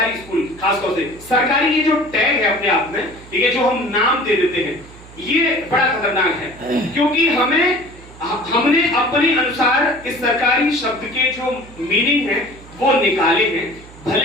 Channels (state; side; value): noise; right; hum, 20 dB below the sound